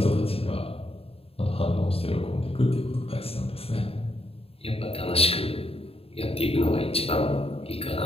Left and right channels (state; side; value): late; right; 0.28 ms